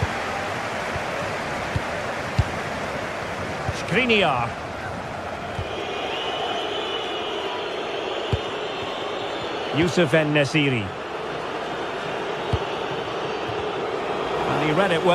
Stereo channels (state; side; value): identical; both; correlation 1.00